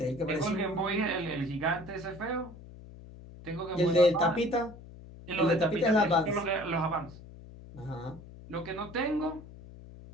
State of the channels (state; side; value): noise; left; hum, 17 dB below the sound